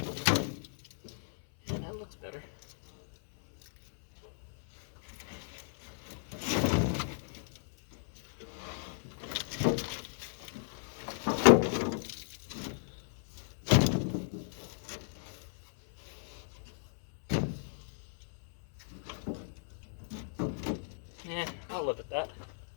That looks better. Yeah, I'll live at that.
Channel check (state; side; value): silent; right; 54 dB below the other